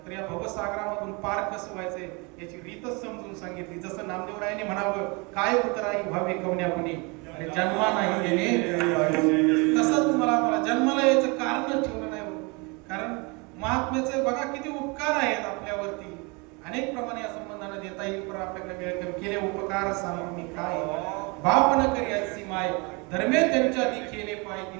तर या भवसागरामधून पार कसं व्हायचंय याची रीतच समजून सांगितली. जसं नामदेवरायांनी म्हणावं, काय उतराई व्हावे कवण्यापुणे, अरे जन्मा नाही येणे, तसं तुम्हाला मला जन्माला यायचं कारण ठेवलं नाही. कारण महात्म्याचे बघा किती उपकार आहेत आपल्यावरती, अनेक प्रमाणे या संबंधाने देता येईल. पण आपल्याकडे वेळ कमी, केले उपकार सांगून मी काय, बाप न करी अशी माय, धर्मे त्यांच्या दिखेने पाय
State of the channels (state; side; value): quieter; left; 29.4 dB